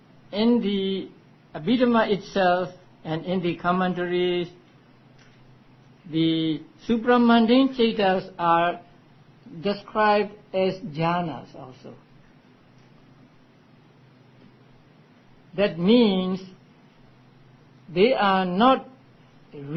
in the Abhidhamma itself and in the commentaries, the supramundane cetas are described as jhanas also. That means they are not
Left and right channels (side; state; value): both; identical; correlation 1.00